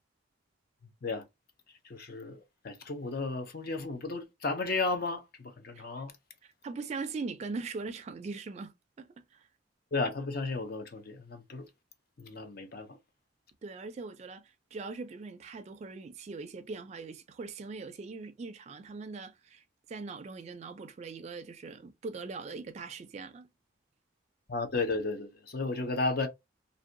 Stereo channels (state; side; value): normal; both; correlation 0.11